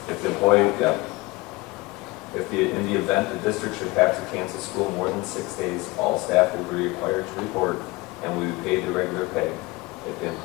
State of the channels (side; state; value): right; quieter; 22.7 dB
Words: If the employee, in the event the district should have to cancel school more than 6 days, all staff will be required to report and will be paid the regular pay. If the